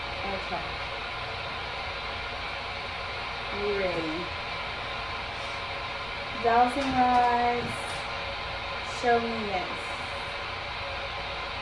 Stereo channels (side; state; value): left; noise; rumble, 18 dB below the sound